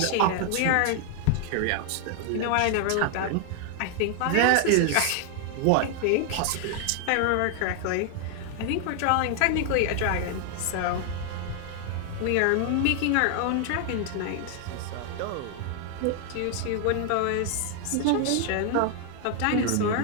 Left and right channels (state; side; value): different; both; correlation 0.00